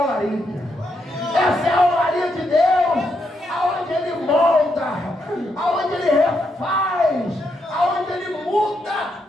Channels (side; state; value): both; normal; correlation 0.80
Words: olaria. Essa é a olaria de Deus, aonde Ele molda, aonde Ele refaz, aonde Ele muda